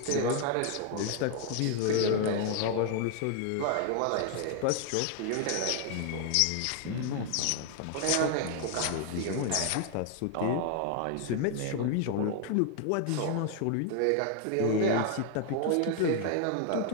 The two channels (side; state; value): both; different; correlation 0.00